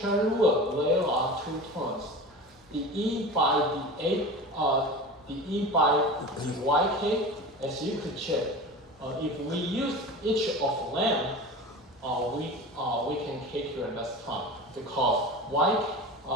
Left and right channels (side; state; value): both; normal; correlation 0.32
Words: rule, there are two terms. The E by the YK, as you could check, if we use each of them, we can calculate less time because